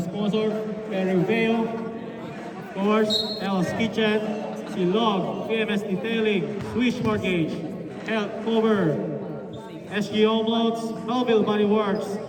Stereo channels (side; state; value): both; identical; correlation 1.00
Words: Perry Vale, of course, El's Kitchen, Silog, PMS Detailing, Swish Mortgage, Health Cover, SG Home Loans, Melville Body Works,